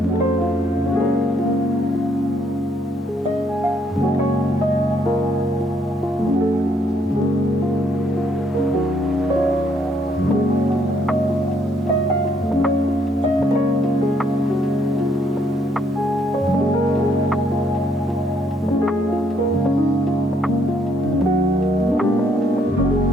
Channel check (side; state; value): both; normal; correlation 0.70